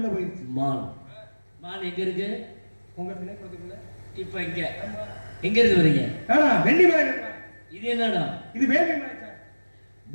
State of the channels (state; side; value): inverted; both; correlation -1.00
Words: போயிருச்சு. மான் எங்க இருக்கு? உங்க திணைக்குளத்துக்குள்ள. இப்ப எங்க இருந்து வரீங்க? வெள்ளிமலை. இது என்னடா? இது வேள்விமலை.